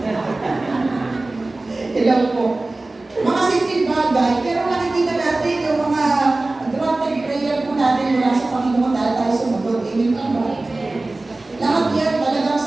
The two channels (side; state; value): left; quieter; 3.0 dB